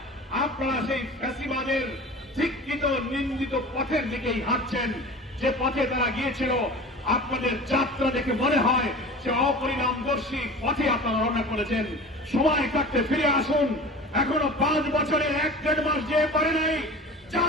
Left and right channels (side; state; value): both; normal; correlation 0.37